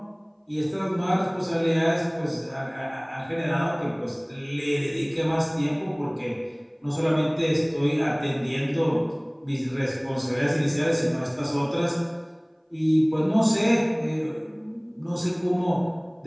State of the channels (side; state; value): both; identical; correlation 1.00